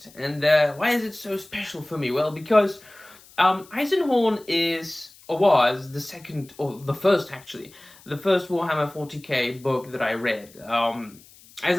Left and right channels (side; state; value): left; noise; hiss, 24 dB below the sound